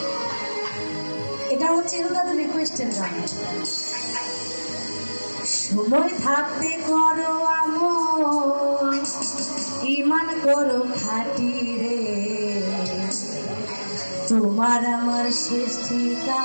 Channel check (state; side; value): inverted; both; correlation -1.00